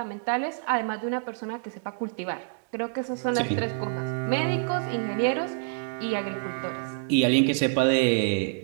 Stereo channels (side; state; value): left; silent; digital silence